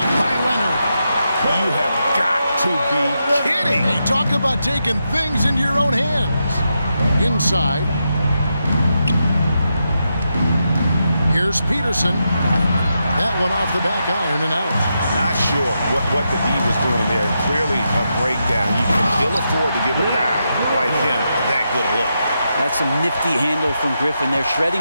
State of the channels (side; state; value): both; inverted; correlation -0.85